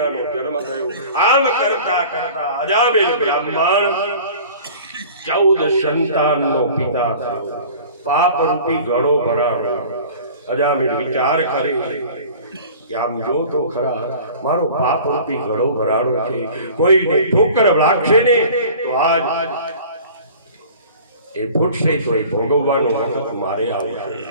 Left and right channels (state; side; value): inverted; both; correlation -0.44